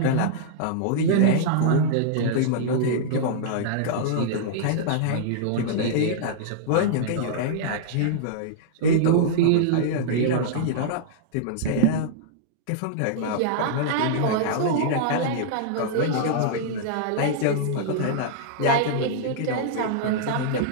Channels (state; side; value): different; both; correlation -0.02